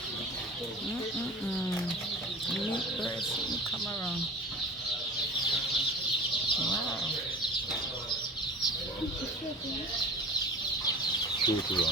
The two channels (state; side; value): normal; both; correlation 0.39